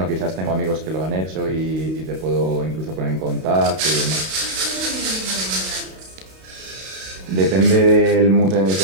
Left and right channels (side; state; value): left; late; 32 ms